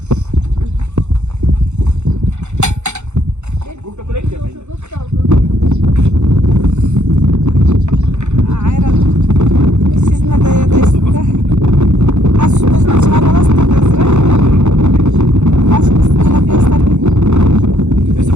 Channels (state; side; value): late; left; 0.83 ms